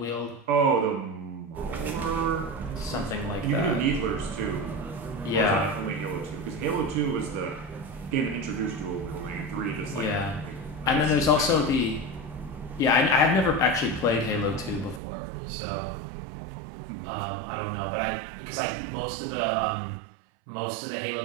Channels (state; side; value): drops out; left; at 15.0 s